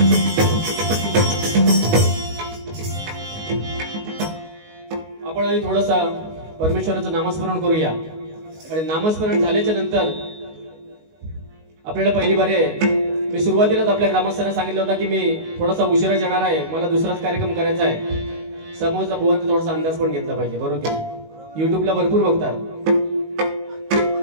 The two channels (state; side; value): late; left; 19 ms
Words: आपण आधी थोडंसा परमेश्वराचं नामस्मरण करूया आणि नामस्मरण झाल्याच्या नंतर आपल्याला पहिली बारी आहे। मी सुरुवातीलाच आपल्या ग्रामस्थांना सांगितलं होतं की मी थोडासा उशिरा येणार आहे, मला दुसराच कार्यक्रम करायचा आहे। समोरचा भुवनचा थोडासा अंदाज पण घेतला पाहिजे, बरोबर की? युट्यूबला भरपूर बघतात,